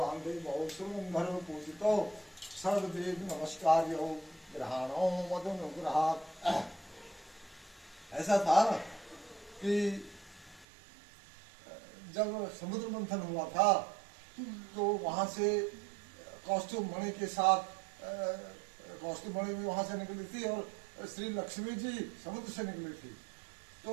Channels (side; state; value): left; drops out; at 10.7 s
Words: बहु सुरंधर पूजितो सर्वदेव नमस्कार्यो ग्रहाणो मदनुग्रहात्। ऐसा था कि जब समुद्र मंथन हुआ था तो वहां से कौस्तुभ मणि के साथ कौस्तुभ मणि भी वहां से निकली थी और श्री लक्ष्मी जी समुद्र से निकली थी। तो